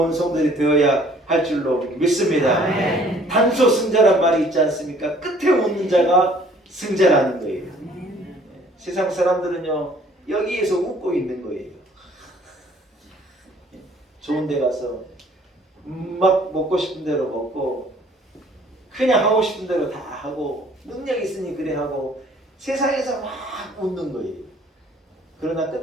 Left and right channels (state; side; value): normal; both; correlation 0.57